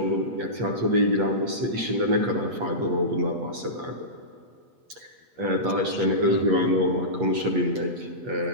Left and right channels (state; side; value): late; left; 8.3 ms